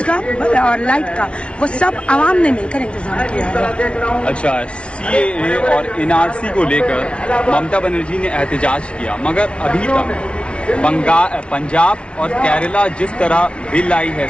का और लाइट का वो सब आवाम ने मिलकर इंतजाम किया है। अच्छा, CAA और NRC को लेकर ममता बनर्जी ने एहतजाज किया, मगर अभी तक पंजाब और केरला जिस तरह बिल आई है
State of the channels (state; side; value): late; right; 0.059 ms